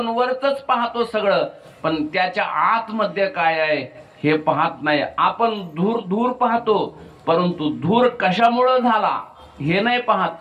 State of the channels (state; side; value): identical; both; correlation 1.00